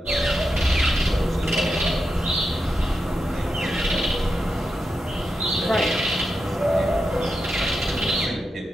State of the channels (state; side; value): normal; both; correlation 0.87